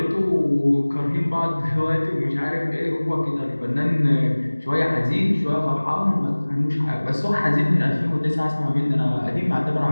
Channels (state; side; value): inverted; both; correlation -1.00